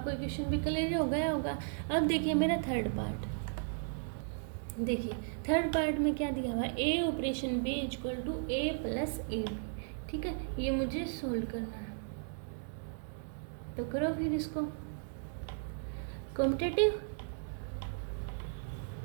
क्वेश्चन भी क्लियर हो गया होगा। अब देखिए मेरा थर्ड पार्ट, देखिए थर्ड पार्ट में क्या दिया हुआ है, ए operation B equal to A plus A B. ठीक है, ये मुझे सोल्व करना है, तो करो फिर इसको। कॉम्पिटेटिव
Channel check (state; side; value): silent; left; digital silence